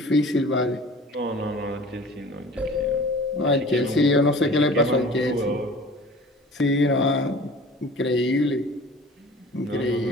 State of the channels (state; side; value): normal; both; correlation 0.44